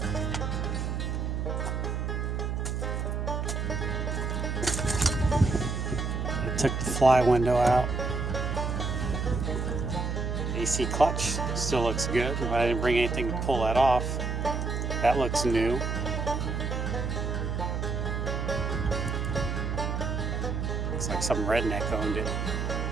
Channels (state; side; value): noise; right; hum, 1 dB below the sound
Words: Took the fly window out. AC clutch still looks good. I didn't bring anything to pull that off. That looks new. Looks like some redneck owned it.